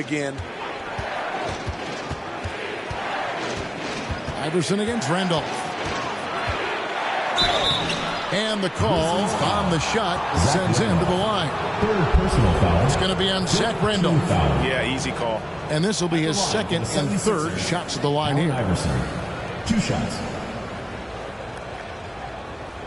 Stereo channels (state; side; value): identical; both; correlation 1.00